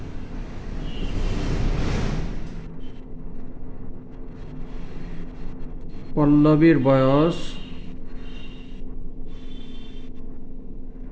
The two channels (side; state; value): both; identical; correlation 1.00